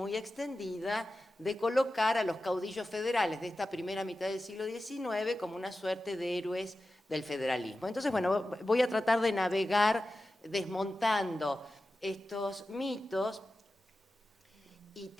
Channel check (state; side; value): normal; both; correlation 0.93